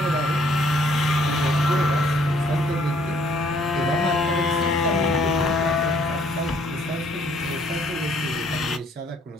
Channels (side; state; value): both; normal; correlation 0.63